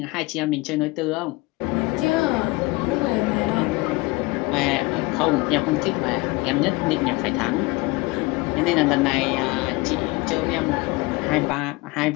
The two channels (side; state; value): right; quieter; 23.4 dB